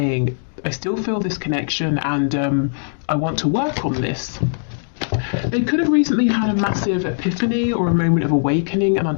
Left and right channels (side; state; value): right; silent; digital silence